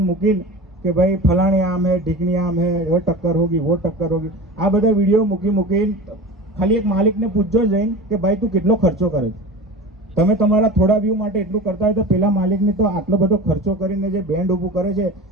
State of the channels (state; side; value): normal; both; correlation 0.33